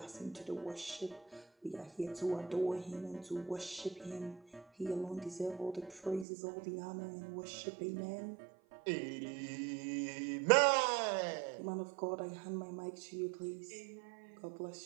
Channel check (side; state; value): left; drops out; at 6.2 s